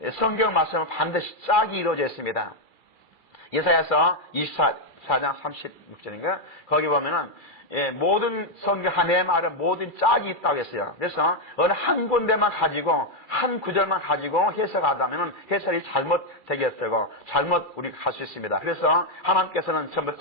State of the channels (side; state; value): right; late; 2.4 ms